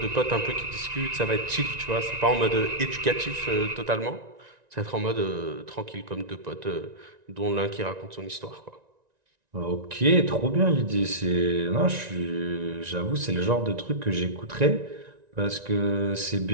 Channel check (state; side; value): late; left; 1.9 ms